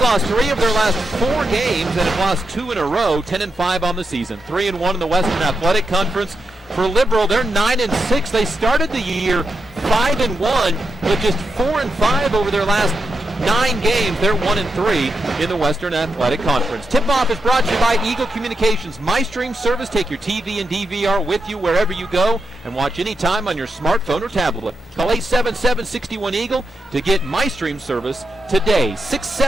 3 of their last 4 games and have lost 2 in a row, 10-5 on the season. 3-1 in the Western Athletic Conference. For Liberal, they're 9-6. They started the year 5-1, but just 4-5 over their last 9 games. They're 1-3 in the Western Athletic Conference. Tip-off is brought to you by Eagle Communications. MyStream service. Take your TV and DVR with you wherever you go and watch anytime on your smartphone or tablet. Call 877-61-EAGLE to get MyStream service today.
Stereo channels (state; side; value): normal; both; correlation 0.84